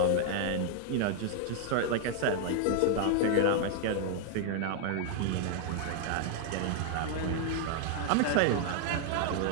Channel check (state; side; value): different; both; correlation 0.00